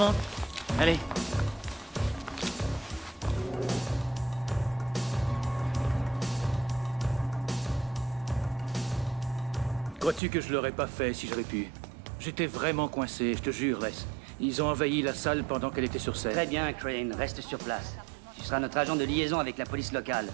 Allez. Crois-tu que je l'aurais pas fait si j'avais pu? J'étais vraiment coincé, je te jure, Les. Ils ont envahi la salle pendant qu'elle était sur scène. Très bien, Crane, reste sur place. Tu seras notre agent de liaison avec la police locale.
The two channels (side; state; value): left; drops out; at 10.2 s